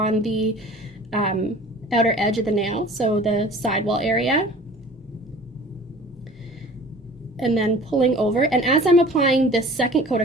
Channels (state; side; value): normal; both; correlation 0.45